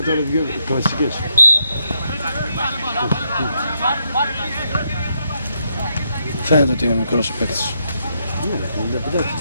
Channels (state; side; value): inverted; both; correlation -0.78